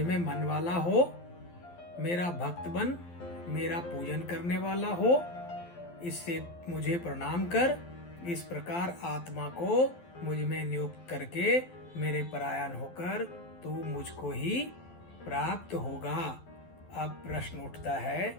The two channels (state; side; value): late; right; 12 ms